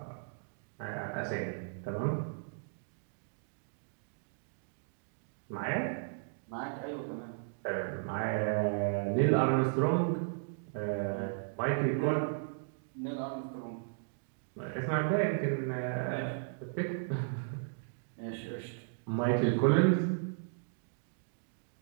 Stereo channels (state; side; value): silent; left; digital silence